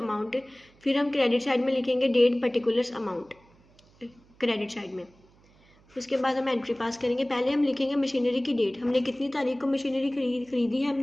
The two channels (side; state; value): right; noise; hum, 30 dB below the sound